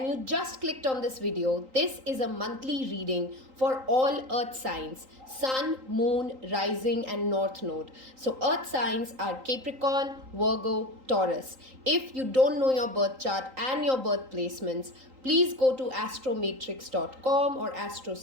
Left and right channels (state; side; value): late; left; 3.8 ms